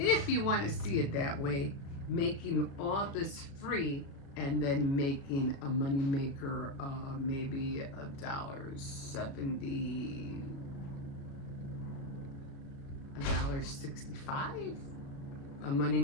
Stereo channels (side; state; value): right; late; 35 ms